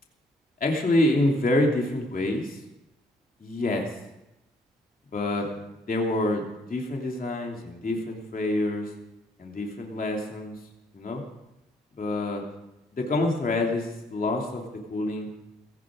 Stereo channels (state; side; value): normal; both; correlation 0.65